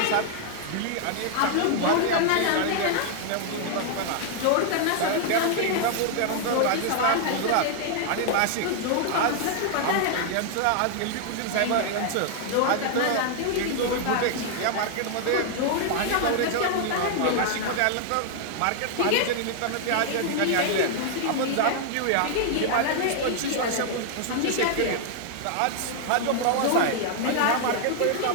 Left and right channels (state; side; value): different; both; correlation 0.00